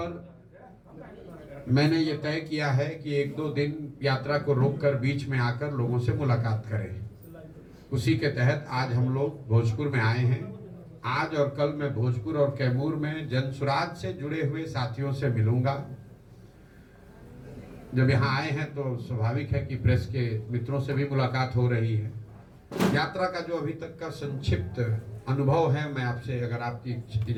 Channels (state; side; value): identical; both; correlation 1.00